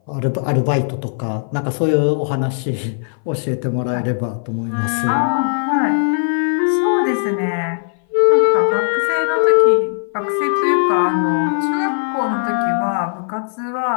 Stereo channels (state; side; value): silent; right; 58 dB below the other